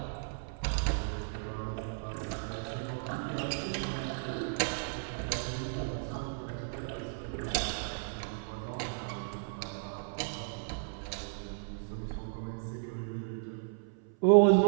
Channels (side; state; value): left; silent; 55 dB below the other